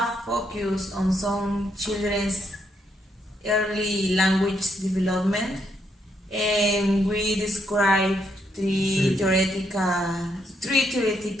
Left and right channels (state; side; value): normal; both; correlation 0.76